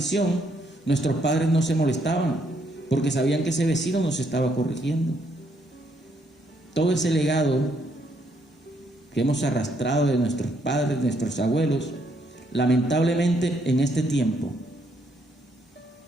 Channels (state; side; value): normal; both; correlation 0.72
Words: nuestros padres no se molestaban, porque sabían que ese vecino nos estaba corrigiendo. Todo ese legado que hemos arrastrado de nuestros padres, de nuestros abuelos, lamentablemente en este tiempo,